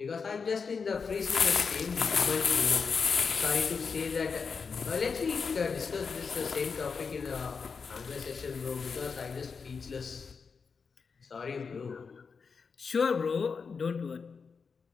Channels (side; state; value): right; quieter; 5.4 dB